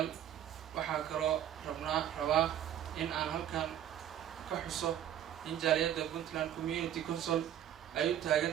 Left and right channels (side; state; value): left; quieter; 10.7 dB